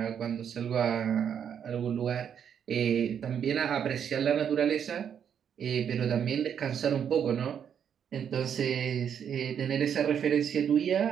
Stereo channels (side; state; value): left; quieter; 8.2 dB